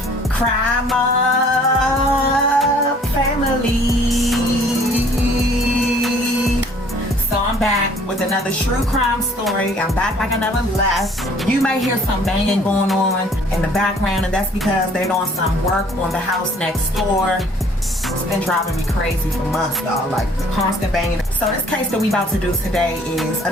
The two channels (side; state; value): both; normal; correlation 0.57